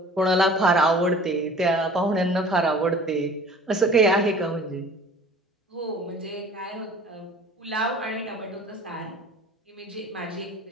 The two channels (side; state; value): both; normal; correlation 0.46